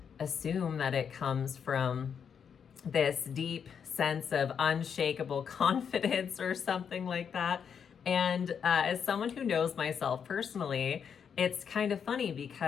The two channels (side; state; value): right; quieter; 7.2 dB